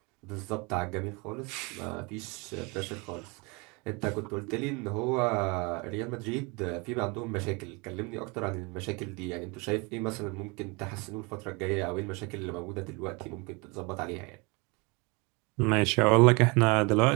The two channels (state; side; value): quieter; left; 28.4 dB